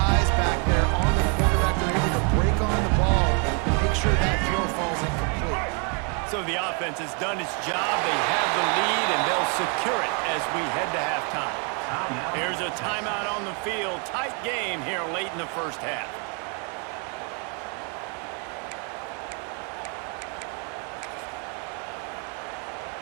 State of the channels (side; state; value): left; quieter; 36.7 dB